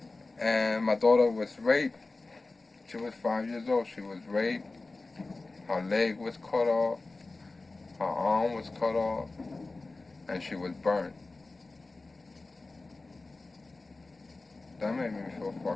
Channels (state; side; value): quieter; right; 3.4 dB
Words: and my daughter was raped. She was 5 years old. She was raped. Her leg was cut off. Her arm was cut off. And she was burnt. That made me feel